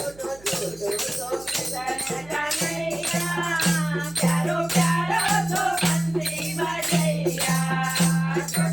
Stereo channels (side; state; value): right; noise; hum, 23 dB below the sound